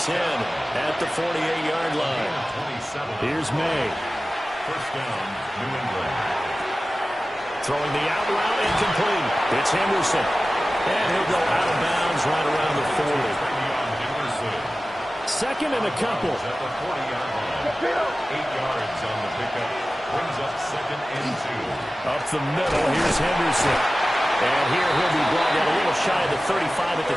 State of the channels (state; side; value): normal; both; correlation 0.96